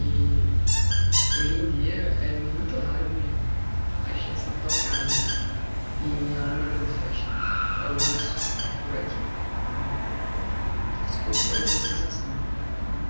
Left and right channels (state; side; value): inverted; both; correlation -1.00